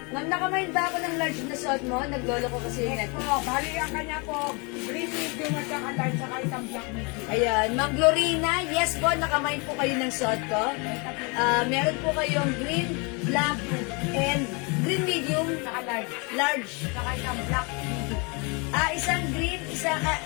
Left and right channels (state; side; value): quieter; right; 31.3 dB